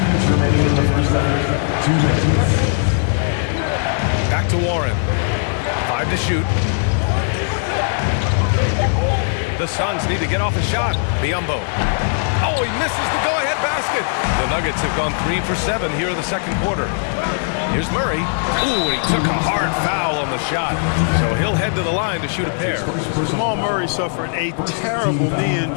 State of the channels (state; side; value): silent; right; 65 dB below the other